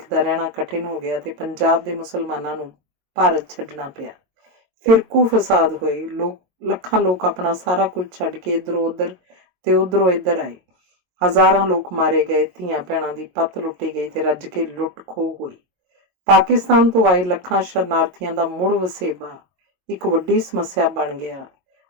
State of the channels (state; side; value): late; left; 22 ms